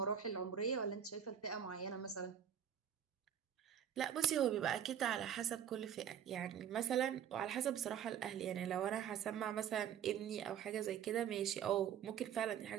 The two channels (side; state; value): left; quieter; 8.9 dB